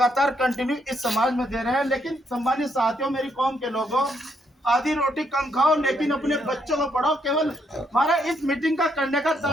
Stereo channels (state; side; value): normal; both; correlation 0.75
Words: कंटिन्यू इस समाज में दे रहे हैं। लेकिन सम्मानित साथियों, मेरी कौम के लोगों, आधी रोटी कम खाओ लेकिन अपने बच्चों को पढ़ाओ। केवल हमारा इस मीटिंग का करने का